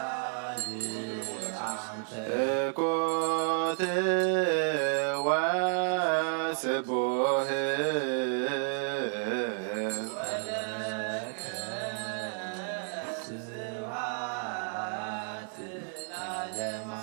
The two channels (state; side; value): silent; left; 57 dB below the other